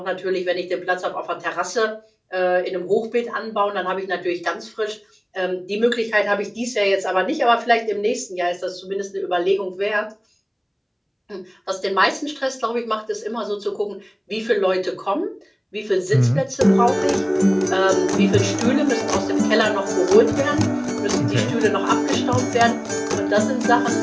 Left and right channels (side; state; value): both; identical; correlation 1.00